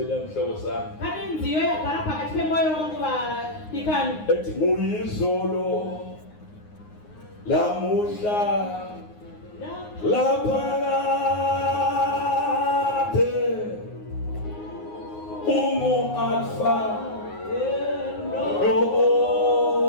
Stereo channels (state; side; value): late; right; 9.6 ms